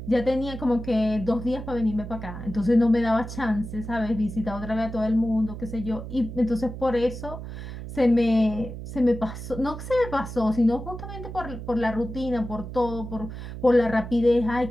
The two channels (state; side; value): noise; right; hum, 9 dB below the sound